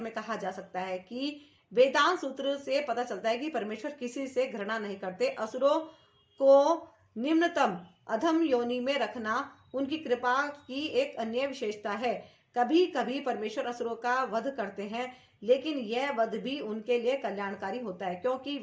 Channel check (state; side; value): identical; both; correlation 1.00